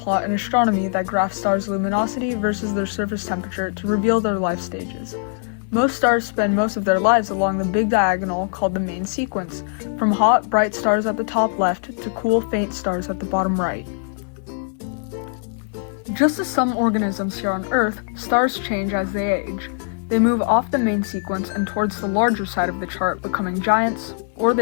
in astronomy that graphs stars' luminosity versus their surface temperature to reveal their life stages. Most stars spend most of their lives along the big diagonal called the main sequence, from hot, bright stars at the top left to cool, faint stars at the bottom right. Just as some organisms here on Earth, stars change as they age. They move off the main sequence and towards the larger side of the chart, becoming giants, or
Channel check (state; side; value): silent; right; 58 dB below the other